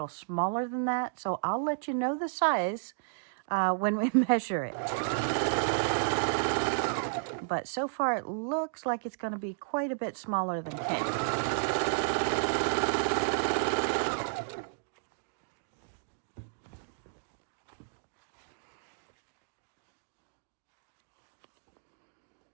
smaller than that. So I'll let you know the size when we measure it. But so far, it looks like it's going to be quite a bit smaller than king.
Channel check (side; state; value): left; silent; digital silence